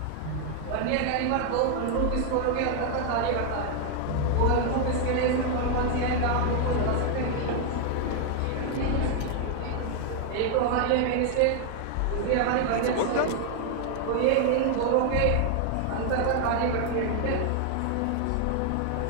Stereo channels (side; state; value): both; different; correlation 0.00